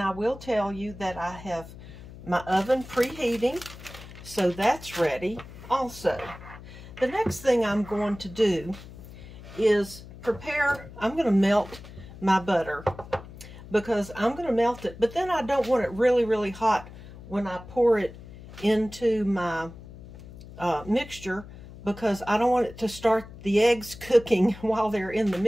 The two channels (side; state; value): left; noise; hum, 16 dB below the sound